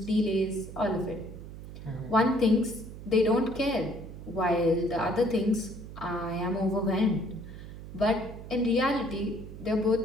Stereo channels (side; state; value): right; noise; hum, 12 dB below the sound